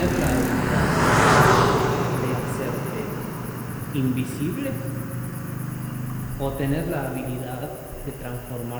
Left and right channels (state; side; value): identical; both; correlation 1.00